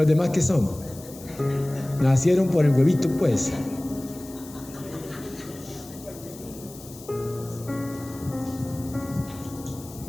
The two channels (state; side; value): noise; left; hiss, 18 dB below the sound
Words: demás qué son? Nacieron por el huevito, pues.